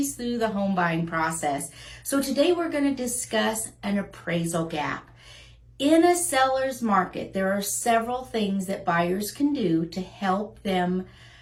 through the home buying process. So today we're going to discuss an appraisal gap. In a seller's market, there are several things that buyers can do to help them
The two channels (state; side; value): identical; both; correlation 1.00